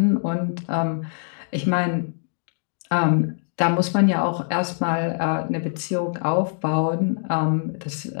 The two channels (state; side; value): silent; right; digital silence